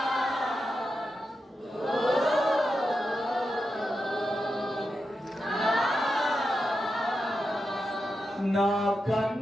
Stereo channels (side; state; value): both; normal; correlation 0.89